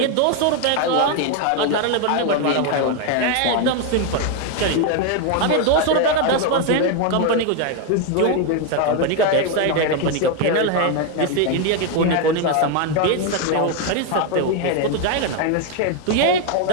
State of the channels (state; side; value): different; both; correlation 0.01